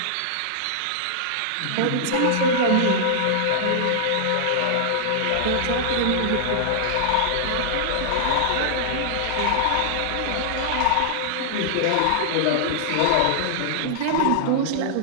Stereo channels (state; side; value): different; both; correlation -0.01